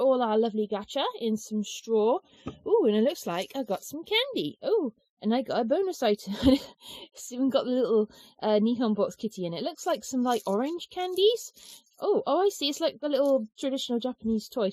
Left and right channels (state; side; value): identical; both; correlation 1.00